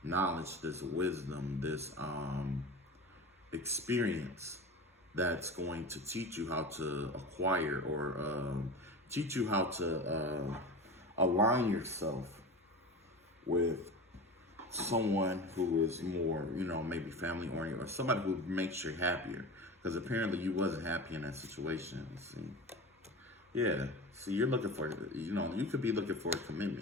knowledge, this wisdom, this experience that's going to teach you how to acquire or teach you how to align yourself with someone who is more, you know, maybe family oriented, or somebody who makes you happier. Because apparently you wasn't happy in that situation. See, yeah. See, you're looking for, you know, you could be looking for a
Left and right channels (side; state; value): both; normal; correlation 0.30